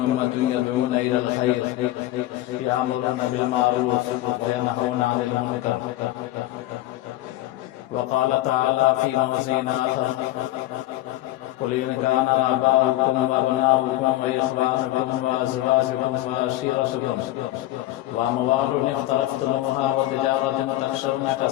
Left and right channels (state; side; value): quieter; right; 15.8 dB